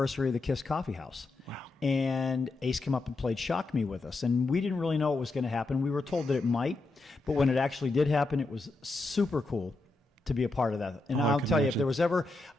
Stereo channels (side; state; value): right; quieter; 3.2 dB